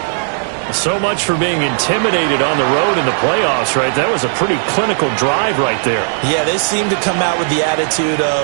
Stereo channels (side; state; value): left; silent; digital silence